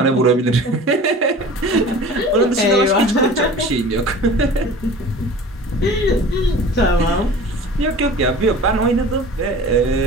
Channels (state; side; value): normal; both; correlation 0.41